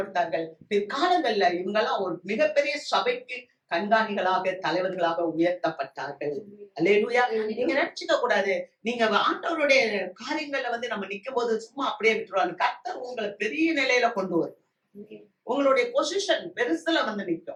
பிற்காலங்கள்ல இவங்கெல்லாம் ஒரு மிகப்பெரிய சபைக்கு கண்காணிகளாக, தலைவர்களாக உயர்த்தப்பட்டார்கள். அல்லேலூயா. நீங்க நினைச்சுக்க கூடாது, நீங்க ஆண்டவருடைய காரியங்கள்ல நம்ம நிக்கும் போது சும்மா அப்படியே விட்டுருவாங்க. கர்த்தர் உங்களை பெரிய நிலையில கொண்டு வரும். உங்களுடைய பொசிஷன் பெருசுல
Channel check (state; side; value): identical; both; correlation 1.00